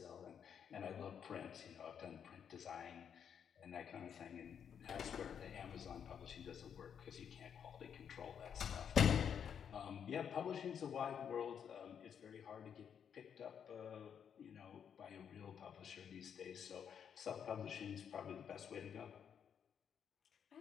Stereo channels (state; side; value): quieter; right; 7.9 dB